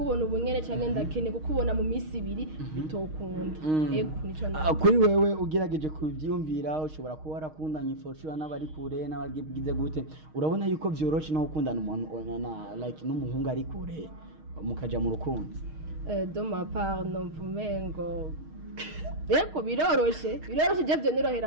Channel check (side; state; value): left; late; 6.4 ms